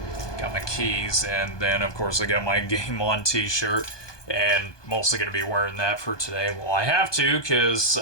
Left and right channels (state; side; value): late; right; 1.2 ms